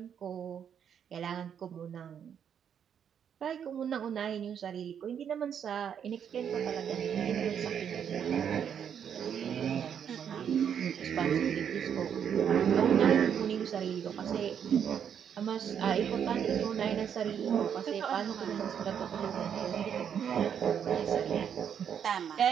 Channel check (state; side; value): quieter; left; 8.2 dB